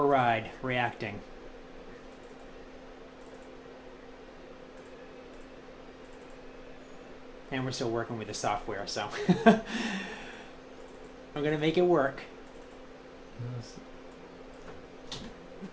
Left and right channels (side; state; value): both; identical; correlation 1.00